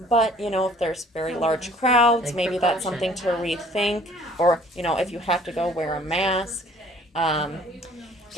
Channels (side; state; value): both; normal; correlation 0.54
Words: But, if there's very large crowds, Take maybe that's something to rethink. Or, if you have to go, wear a mask.